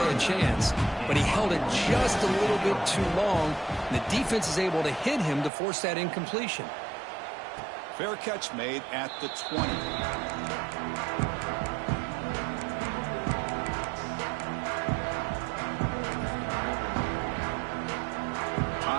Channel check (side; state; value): left; drops out; at 5.5 s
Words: a chance. But he held it just a little bit too long. And the defense is able to hit him to force that incompletion. Fair catch made at the 20.